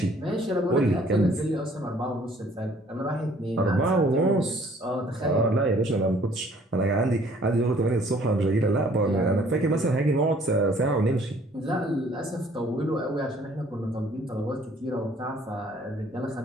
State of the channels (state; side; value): normal; both; correlation 0.58